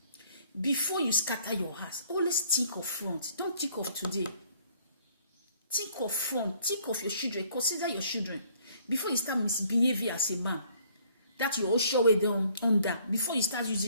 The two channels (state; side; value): inverted; both; correlation -0.60